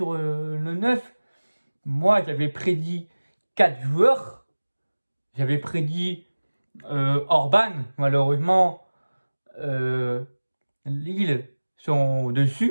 le 9. Moi, j'avais prédit 4 joueurs. J'avais prédit Orban. Malheureusement, Lille sont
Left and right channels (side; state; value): both; inverted; correlation -1.00